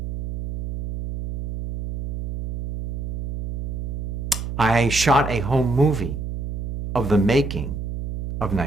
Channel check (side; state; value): right; noise; hum, 4 dB below the sound